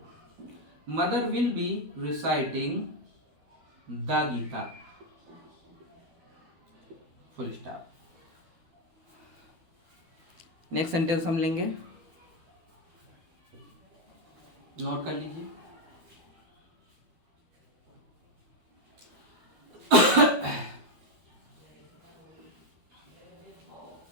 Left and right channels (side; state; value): left; late; 12 ms